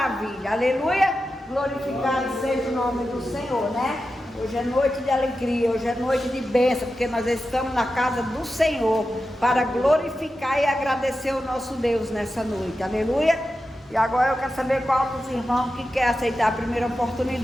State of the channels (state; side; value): normal; both; correlation 0.91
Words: Aleluia! Glorificado seja o nome do Senhor, né? Hoje é noite de alegria, hoje é noite de bênção, porque nós estamos na casa do Senhor para glorificar e agradecer o nosso Deus nessa noite. Aleluia! E agora eu quero saber qual dos irmãos que quer aceitar a primeira